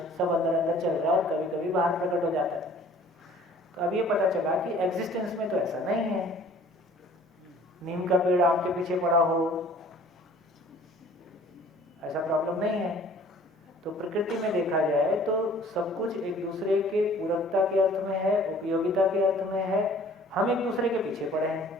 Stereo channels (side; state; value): both; normal; correlation 0.52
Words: सब अंदर अंदर चल रहा है और कभी कभी बाहर प्रकट हो जाता है। तो अब ये पता चला कि एग्जिस्टेंस में तो ऐसा नहीं है, नीम का पेड़ आम के पीछे पड़ा हो, ऐसा प्रॉब्लम नहीं है। तो प्रकृति में देखा जाए तो सब कुछ एक दूसरे के पूरकता के अर्थ में है, उपयोगिता के अर्थ में है, हम एक दूसरे के पीछे पड़े हैं।